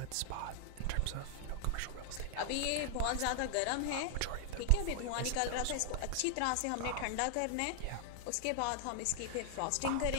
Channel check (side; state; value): both; different; correlation -0.01